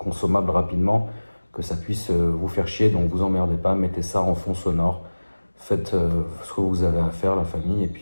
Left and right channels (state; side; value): inverted; both; correlation -1.00